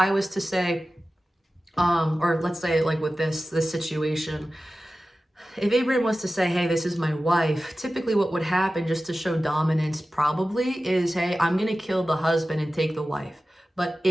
was to say, or let's say like with this situation, if Abram was to say, hey, this is my wife, typically what would happen just to show dominance probably is, hey, I'm going to kill the husband and take the wife. But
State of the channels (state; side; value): normal; both; correlation 0.95